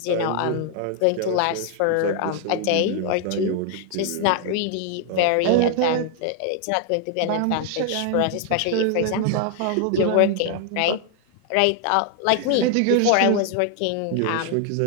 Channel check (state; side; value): different; both; correlation 0.00